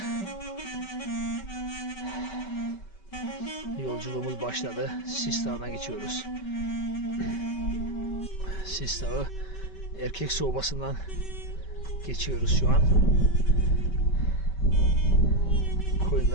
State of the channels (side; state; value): right; late; 5.2 ms